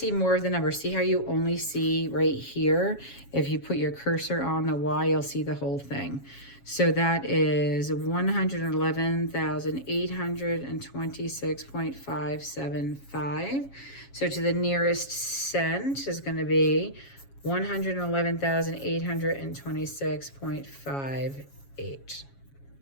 more of the numbers, see how you only see right here. If you put your cursor on the Y, you'll see the whole thing. So that is 111,826.575. So to the nearest cent is going to be 111,826.5 8.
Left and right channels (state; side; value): late; right; 7.3 ms